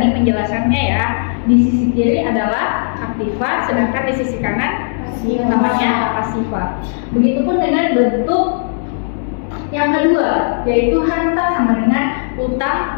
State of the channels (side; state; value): right; silent; digital silence